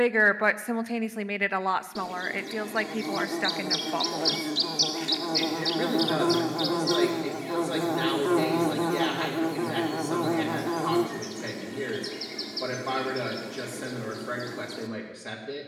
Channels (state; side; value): identical; both; correlation 1.00